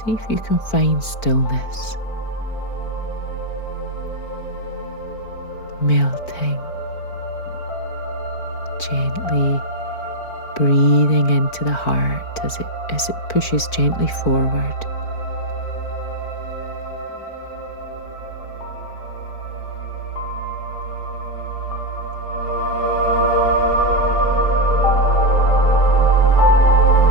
if you can find stillness. Melting. Gently breathing into the heart as it pushes gently forward.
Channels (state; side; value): late; right; 4.5 ms